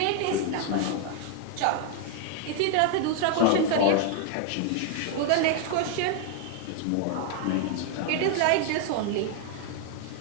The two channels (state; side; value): different; both; correlation 0.00